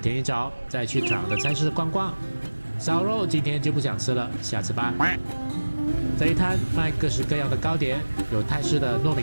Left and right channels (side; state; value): both; inverted; correlation -1.00